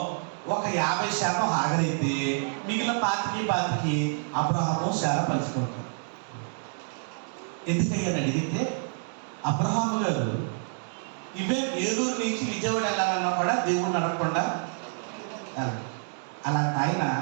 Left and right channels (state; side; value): silent; left; 58 dB below the other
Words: ఒక 50% హాగరైతే మిగిలిన 25 అబ్రహాము శారా పంచుకుంటారు. ఎందుకయ్యని అడిగితే, అబ్రహాము గారు ఇవే వేలూరు నుంచి విజయవాడ వెళ్ళాలన్నా కూడా దేవుడిని అడగకుండా అలాంటి